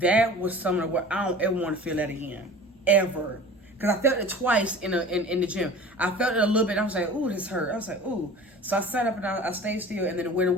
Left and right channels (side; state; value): both; normal; correlation 0.41